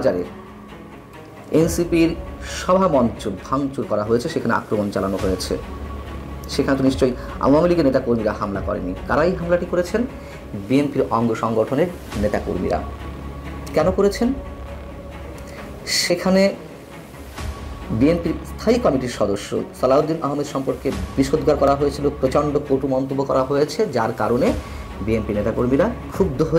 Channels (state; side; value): identical; both; correlation 1.00